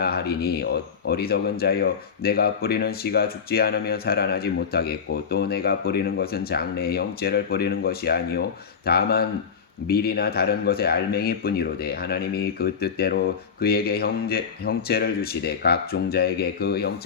하리니 어리석은 자여, 내가 뿌리는 씨가 죽지 않으면 살아나지 못하겠고 또 내가 뿌리는 것은 장래의 형체를 뿌리는 것이 아니요 다만 밀이나 다른 것의 알맹이뿐이로되 하나님이 그 뜻대로 그에게 형체를 주시되 각 종자에게 그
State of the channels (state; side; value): quieter; right; 6.4 dB